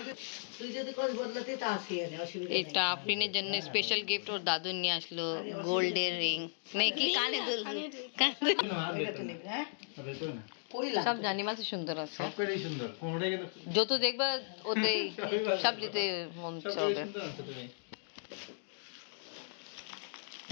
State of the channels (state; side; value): silent; right; digital silence